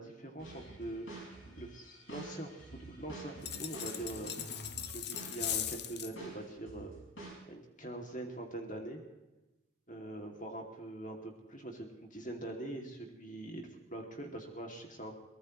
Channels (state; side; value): normal; both; correlation 0.30